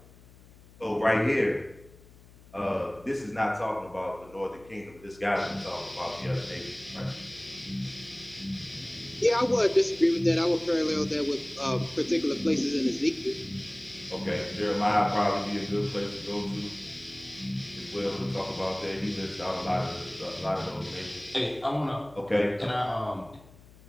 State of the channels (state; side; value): noise; left; hum, 23 dB below the sound